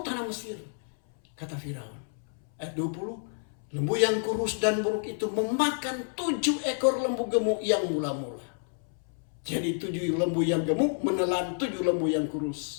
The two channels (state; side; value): silent; right; 58 dB below the other